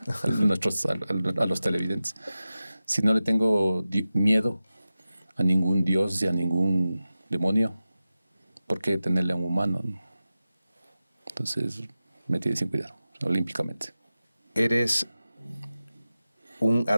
a los televidentes. Si no le tengo miedo a ningún dios y a ningún demonio, ¿por qué tenerle a un humano? Entonces me tiene sin cuidado, olímpicamente. ¿Eres un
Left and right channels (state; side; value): inverted; both; correlation -0.94